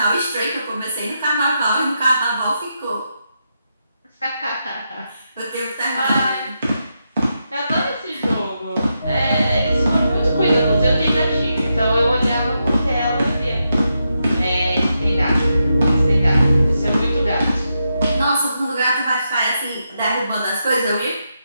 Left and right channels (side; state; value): both; inverted; correlation -0.85